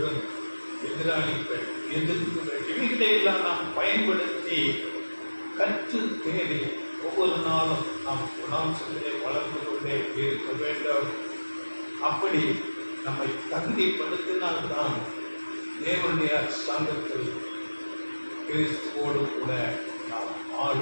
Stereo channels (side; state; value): both; inverted; correlation -1.00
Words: எதிராளிகள், எதிர்ப்புகள், இவைகளையெல்லாம் நாம் பயன்படுத்தி கற்று தேடி ஒவ்வொரு நாளும் நாம் குணாம்சத்திலே வளர்ந்து கொண்டே இருக்க வேண்டும். அப்படி நம்மை தகுதிப்படுத்தினால்தான் தேவனுடைய சங்கத்தில் கிறிஸ்துவோடு கூட நாம்